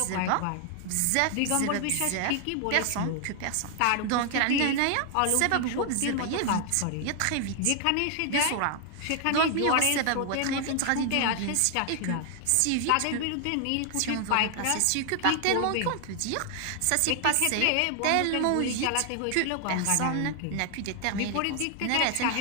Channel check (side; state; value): both; different; correlation 0.00